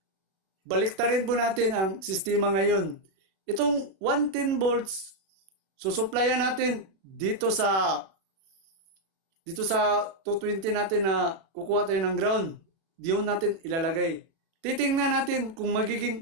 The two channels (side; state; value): left; late; 36 ms